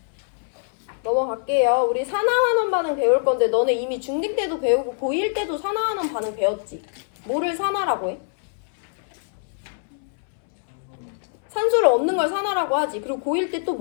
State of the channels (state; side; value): silent; right; 63 dB below the other